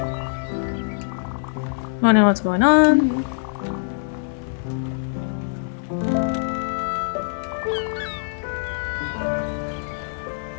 Wondering what's going on.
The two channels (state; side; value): silent; right; digital silence